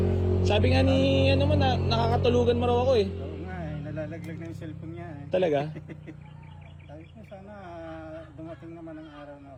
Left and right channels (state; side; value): identical; both; correlation 1.00